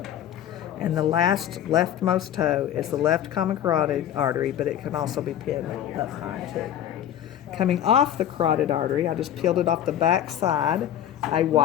And the last leftmost toe is the left common carotid artery, but it can also be pinned up high too. Coming off the carotid artery, I just peeled it off the back side, a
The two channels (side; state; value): right; quieter; 10.7 dB